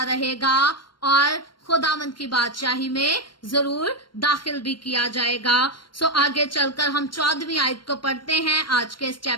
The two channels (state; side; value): late; right; 0.72 ms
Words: रहेगा और खुदावन की बादशाही में जरूर दाखिल भी किया जाएगा। सो आगे चलकर हम 14वीं आयत को पढ़ते हैं। आज के इस